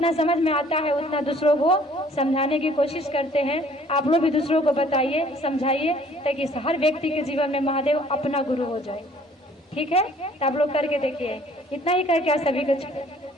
समझ में आता है उतना दूसरों को समझाने की कोशिश करते हैं। आप लोग भी दूसरों को बताइए, समझाइए, ताकि हर व्यक्ति के जीवन में महादेव अपना गुरु हो जाए। ठीक है, तो आप लोग करके देखिए। इतना ही करके आप सभी को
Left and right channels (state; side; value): normal; both; correlation 0.56